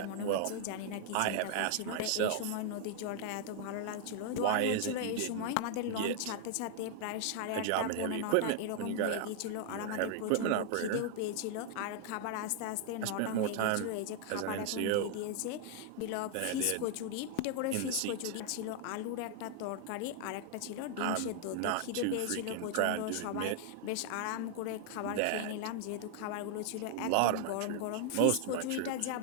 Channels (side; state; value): both; different; correlation 0.00